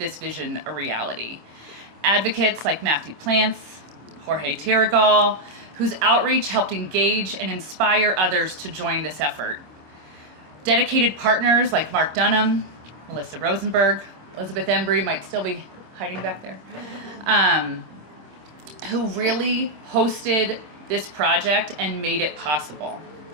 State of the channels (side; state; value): left; late; 25 ms